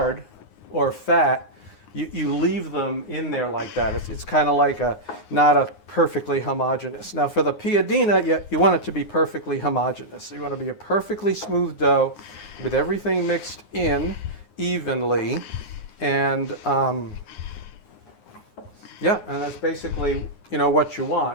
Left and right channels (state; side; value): late; right; 9.6 ms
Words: or fat, you leave them in there like that. It's kind of like not a perfectly homogeneous. Now for the Piadina, you want it to be perfectly homogeneous. So you want to be a perfectly smooth dough with everything mixed in evenly. And yeah, and that's basically, what you